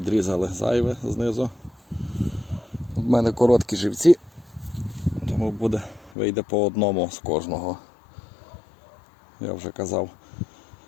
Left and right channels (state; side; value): drops out; right; at 6.2 s